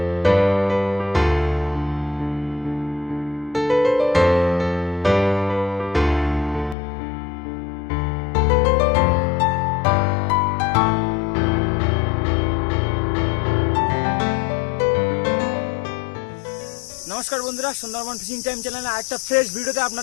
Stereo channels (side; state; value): right; drops out; at 6.8 s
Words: নমস্কার বন্ধুরা, সুন্দরবন ফিশিং টাইম চ্যানেলে আরেকটা ফ্রেশ ভিডিওতে